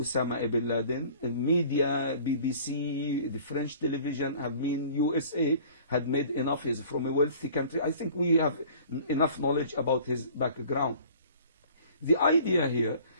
bin Laden in media, BBC, the French television have been, USA had made enough. He's from a wealthy country. I think we have enough knowledge about his background. The idea here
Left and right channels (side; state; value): both; inverted; correlation -0.49